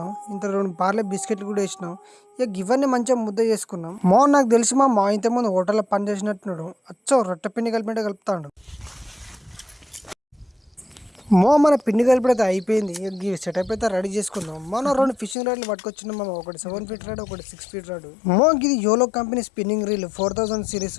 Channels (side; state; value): right; drops out; at 15.4 s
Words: ఇంత 2 పార్లే బిస్కెట్లు కూడా వేసినాం. ఇవన్నీ మంచిగా ముద్ద చేసుకున్నాం. నాకు తెలిసి మా ఇంతకుముందు హోటల్లో పని చేసినట్టున్నాడు, రొట్టె పిండి కలిపినట్టు కలుపుతాడు. మన పిండి కలిపితే అయిపోయింది. సెటప్ అయితే రెడీ చేసుకుందాం. 2 ఫిషింగ్ రాడ్లు పట్టుకొచ్చినాం. ఒకటి 7 ఫీట్ రాడ్, ఒకటి 6 ఫీట్ రాడ్. ఇది YOLO company spinning reel 4000